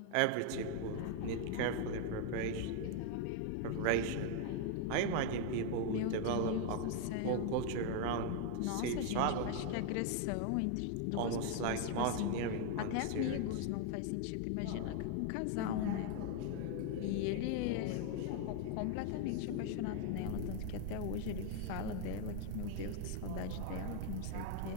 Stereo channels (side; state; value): both; different; correlation 0.01